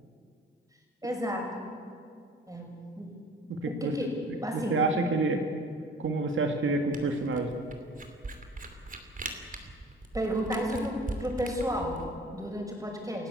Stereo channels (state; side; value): normal; both; correlation 0.48